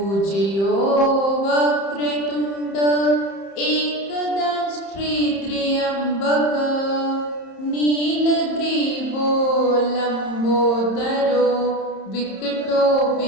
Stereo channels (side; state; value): right; late; 30 ms